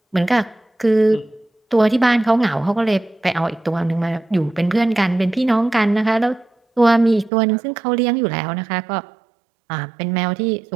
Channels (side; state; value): left; drops out; at 7.3 s